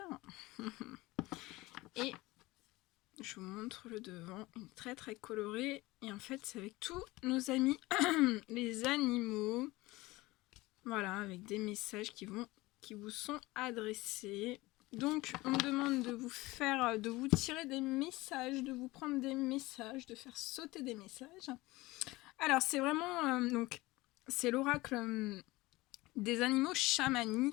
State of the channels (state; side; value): quieter; right; 20.4 dB